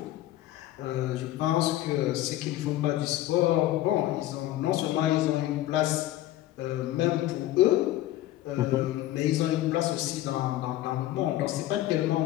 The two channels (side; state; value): right; quieter; 14.7 dB